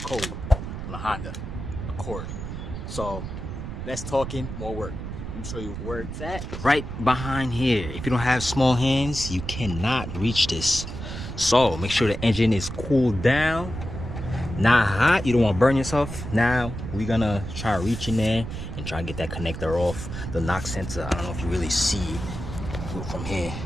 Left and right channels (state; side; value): noise; right; rumble, 7 dB below the sound